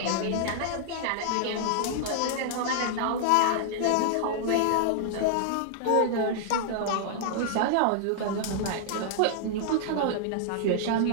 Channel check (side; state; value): both; different; correlation -0.01